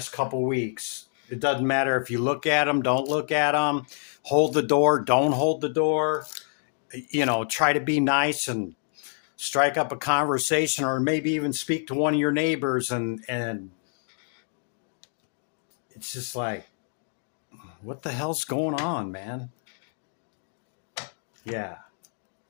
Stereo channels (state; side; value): silent; right; 58 dB below the other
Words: couple weeks. It doesn't matter if you look at them, don't look at them, hold the door, don't hold the door, you know, try to be nice and strike up a conversation, or maybe even speak to one of your neighbors, and it's just like, what the hell's going on, man? Yeah.